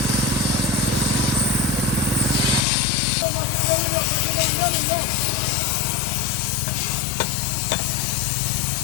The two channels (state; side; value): drops out; right; at 2.6 s